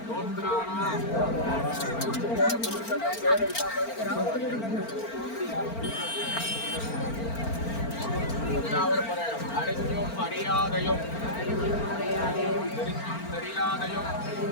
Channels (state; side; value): late; right; 4.4 ms